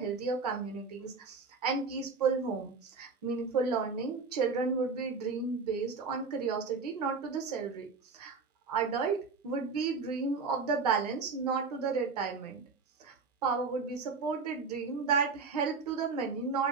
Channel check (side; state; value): left; quieter; 4.7 dB